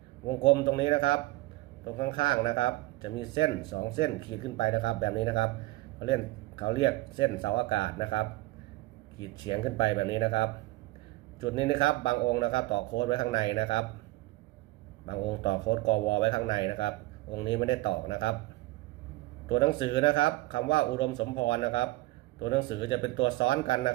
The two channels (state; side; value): quieter; left; 19.5 dB